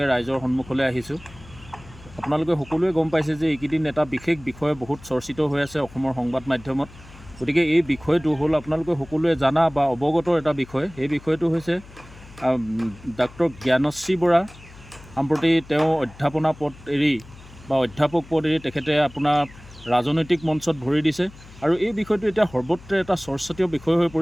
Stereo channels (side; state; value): left; noise; hum, 20 dB below the sound